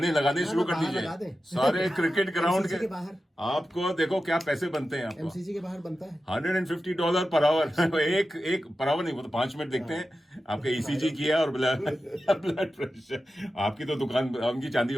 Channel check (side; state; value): both; normal; correlation 0.92